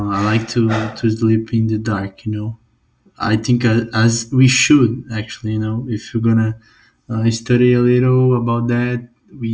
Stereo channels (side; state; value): both; identical; correlation 1.00